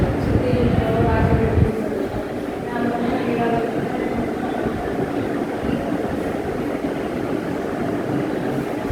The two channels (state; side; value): identical; both; correlation 1.00